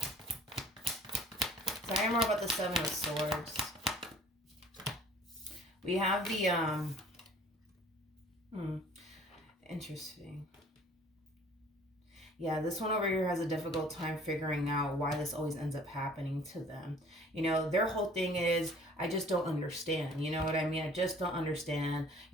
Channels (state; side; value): normal; both; correlation 0.51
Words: Sorry more about the 7 of Swords. We have the, interesting. Yeah, this one over here has a difficult time figuring out why this always ends up happening to them. Their whole thing is, I just don't understand. You know what I mean? I just don't understand.